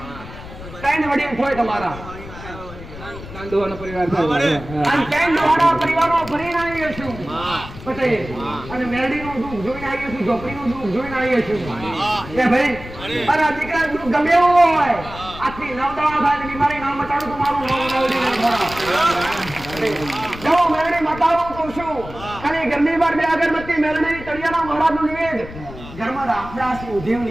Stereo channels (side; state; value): left; noise; rumble, 14 dB below the sound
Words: ત્રણ વડીલ હોય તમારા કાંદોવાનો પરિવાર થાય. અને ત્રણ દાડા પરિવારો ભરીને આવીએ છું પટેલ, અને મેરડીનું દુઃખ જોઈને આવીએ છું, ઝોપડીનું દુઃખ જોઈને આવીએ છું. એ ભાઈ અને આ દીકરા દુઃખ ગમે એવું હોય, આખી નવદવા થાય બીમારી ના મટાડું તો મારું નામ મેરડી નહીં ખરા. જો મેરડી મટાડું તો શું, ખાલી ઘરની બહાર બે અગરબત્તી મેરડી તળિયાના મહારાજનું નિવેદ. ઘરમાં રામદાસી ઉધેવ